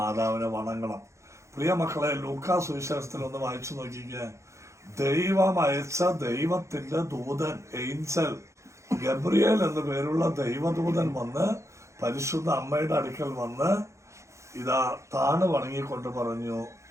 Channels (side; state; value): left; late; 0.14 ms